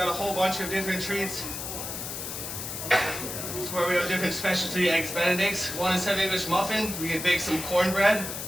a whole bunch of different treats. Where we have different specialty Eggs Benedicts. One is English muffin. We can bake some cornbread.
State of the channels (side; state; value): left; noise; hiss, 6 dB below the sound